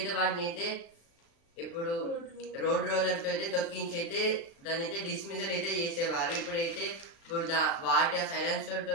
వాటిని అయితే ఇప్పుడు రోడ్ రోలర్తో అయితే తొక్కించి అయితే దాన్ని అయితే డిస్మిసల్ అయితే చేసేవారు. ఇప్పుడైతే వాటి ఆ సైలెన్సర్తో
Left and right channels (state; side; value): late; right; 36 ms